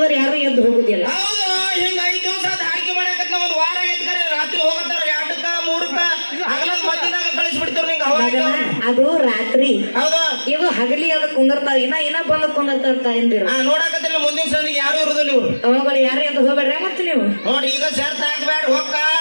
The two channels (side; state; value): both; inverted; correlation -1.00